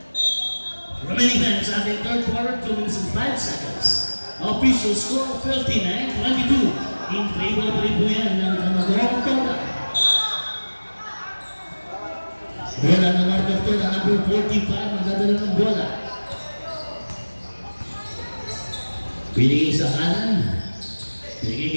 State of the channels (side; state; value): both; inverted; correlation -1.00